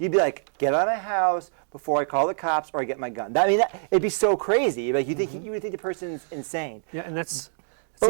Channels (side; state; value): left; silent; digital silence